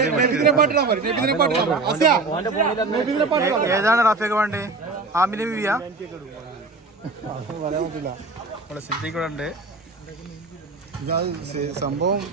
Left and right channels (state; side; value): quieter; left; 3.6 dB